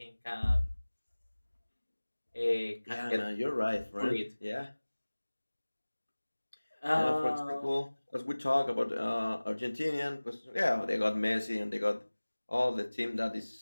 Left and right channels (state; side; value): inverted; both; correlation -1.00